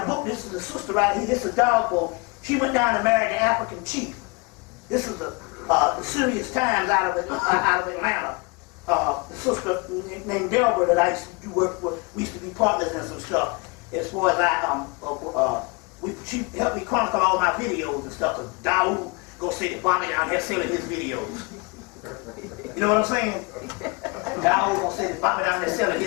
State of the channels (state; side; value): quieter; right; 29.4 dB